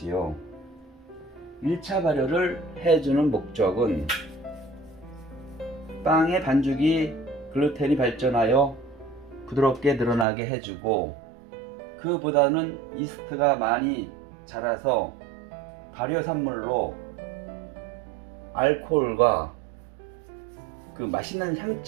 1차 발효를 해주는 목적은 빵의 반죽이 글루텐이 발전하여 부드럽게 늘어나게 해주고, 그보다는 이스트가 많이 자라서 발효산물로 알코올과 그 맛있는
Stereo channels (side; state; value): left; drops out; at 10.2 s